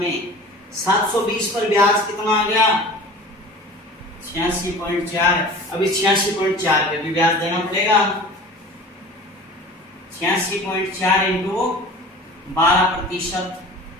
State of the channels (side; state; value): both; normal; correlation 0.40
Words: 720 पर ब्याज कितना आ गया? 86.4। अभी 86.4 पे भी ब्याज देना पड़ेगा। 86.4 इंटू 12%,